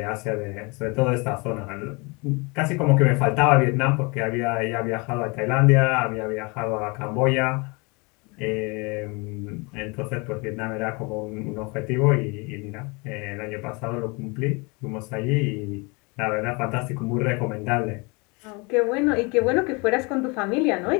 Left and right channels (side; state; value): right; quieter; 29.1 dB